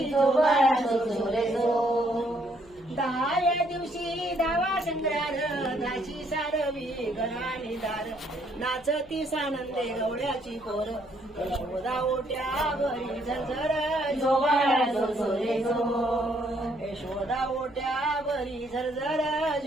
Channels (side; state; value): left; noise; hum, 25 dB below the sound